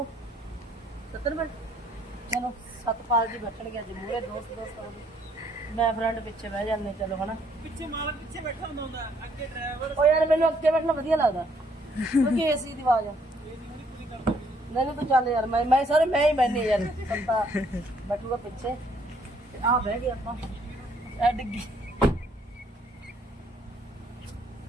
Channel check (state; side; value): normal; both; correlation 0.66